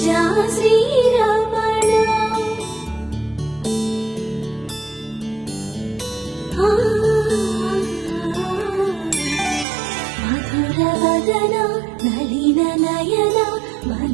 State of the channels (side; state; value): left; drops out; at 9.7 s